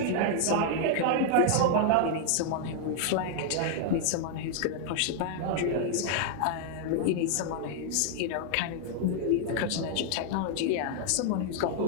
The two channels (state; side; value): different; both; correlation 0.00